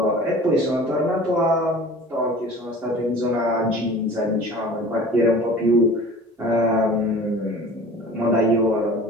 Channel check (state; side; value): normal; both; correlation 0.43